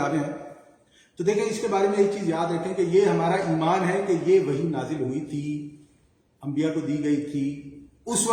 ہیں. تو دیکھیں اس کے بارے میں ایک چیز یاد رکھیں کہ یہ ہمارا ایمان ہے کہ یہ وحی نازل ہوئی تھی، انبیاء کو دی گئی تھی، اس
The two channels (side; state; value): both; identical; correlation 1.00